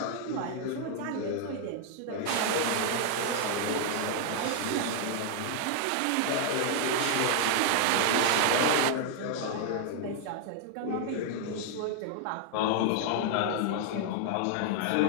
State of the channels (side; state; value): both; different; correlation 0.00